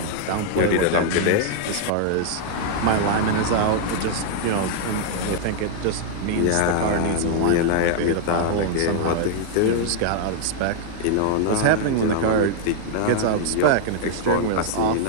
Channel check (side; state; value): both; different; correlation -0.01